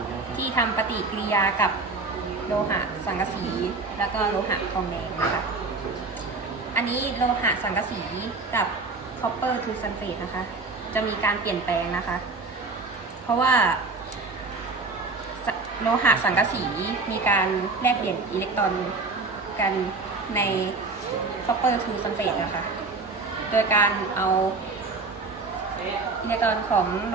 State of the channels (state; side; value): quieter; left; 3.8 dB